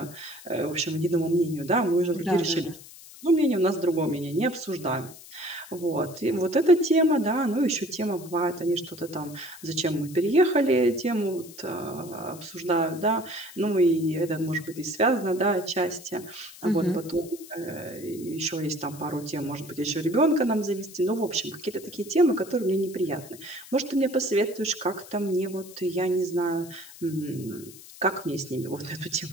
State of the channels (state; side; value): noise; left; hiss, 18 dB below the sound